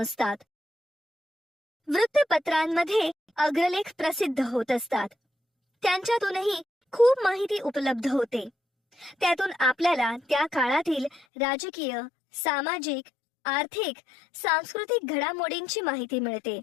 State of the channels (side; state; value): right; drops out; at 11.2 s